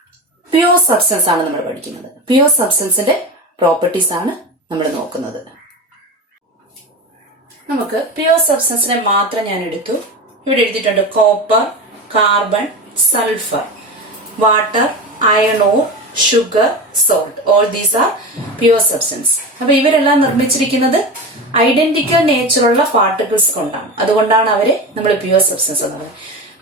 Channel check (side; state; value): both; normal; correlation 0.26